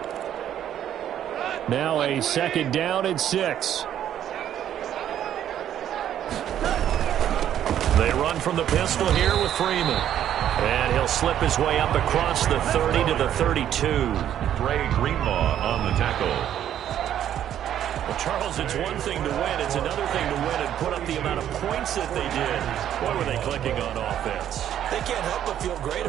Now a 2nd down and 6. They run from the pistol here with Freeman. And he'll slip his way up across the 30 to the 32. Ray Greenlaw on the tackle. Well, Charles, it's one thing to win. It's another thing to win and put up the amount of points that they did. What were they clicking on offense? They can't help but feel great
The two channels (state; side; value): quieter; left; 10.6 dB